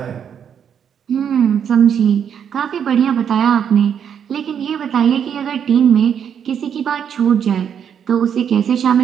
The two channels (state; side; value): quieter; left; 8.2 dB